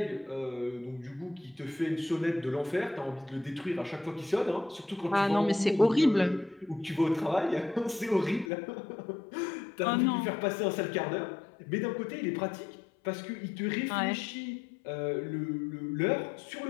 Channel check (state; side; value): drops out; right; at 8.5 s